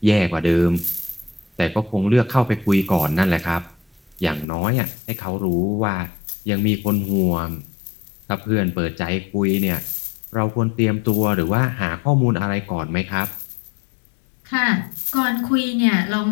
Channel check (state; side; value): drops out; right; at 4.5 s